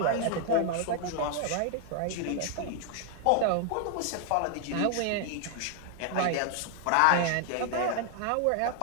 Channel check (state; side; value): different; both; correlation 0.00